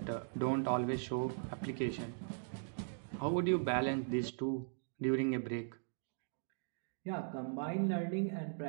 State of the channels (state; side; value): silent; left; digital silence